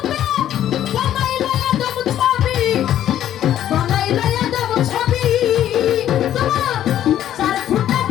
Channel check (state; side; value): quieter; right; 11.5 dB